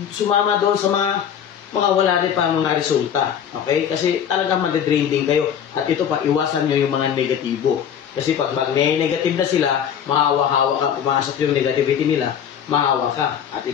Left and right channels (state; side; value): quieter; right; 8.6 dB